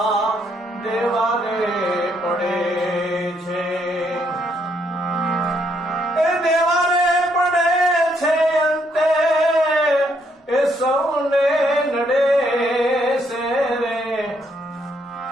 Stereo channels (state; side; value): normal; both; correlation 0.72